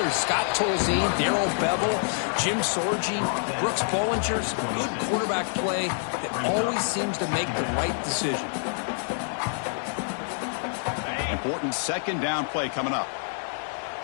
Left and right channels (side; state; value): right; silent; 59 dB below the other